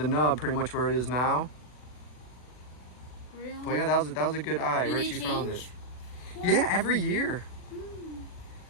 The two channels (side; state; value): right; late; 40 ms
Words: nub, pretty much where it is now. really? But yeah, that was a good eye. Do they Richie found it. change? Yeah, every year. Mm.